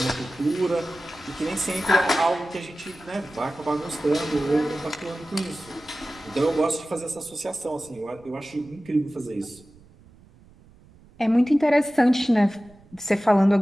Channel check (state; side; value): noise; right; rumble, 26 dB below the sound